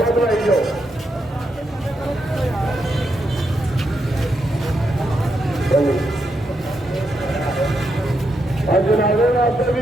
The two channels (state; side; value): normal; both; correlation 0.82